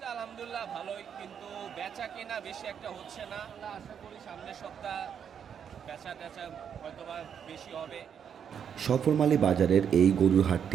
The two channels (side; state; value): left; quieter; 7.9 dB